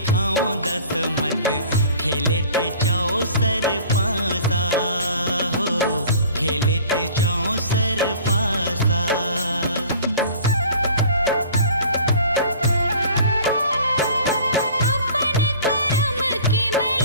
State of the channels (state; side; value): inverted; both; correlation -0.46